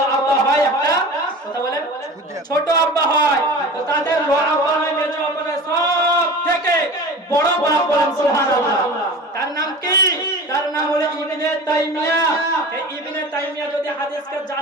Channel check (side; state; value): both; normal; correlation 0.36